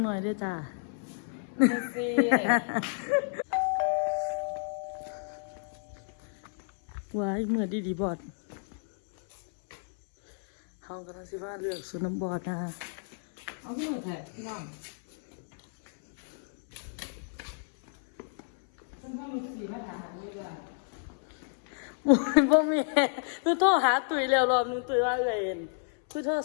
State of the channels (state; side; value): silent; right; 57 dB below the other